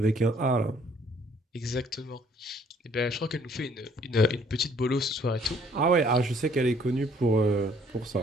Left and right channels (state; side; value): normal; both; correlation 0.61